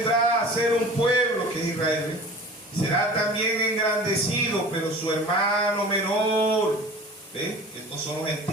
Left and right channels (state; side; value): normal; both; correlation 0.41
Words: a ser un pueblo, que es Israel. Será también engrandecido, pero su hermano menor, estos son los